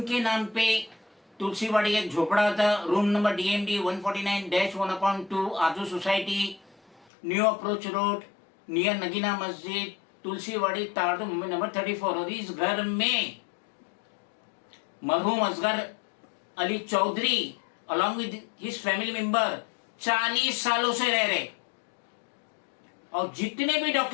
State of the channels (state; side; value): drops out; right; at 7.1 s